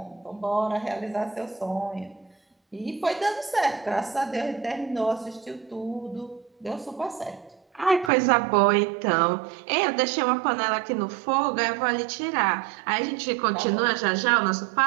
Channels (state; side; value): drops out; left; at 8.1 s